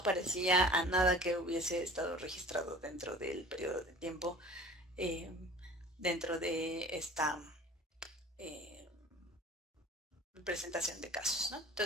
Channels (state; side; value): normal; both; correlation 0.42